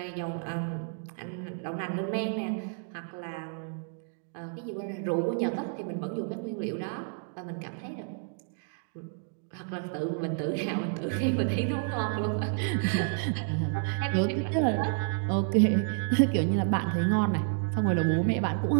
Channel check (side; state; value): left; silent; 58 dB below the other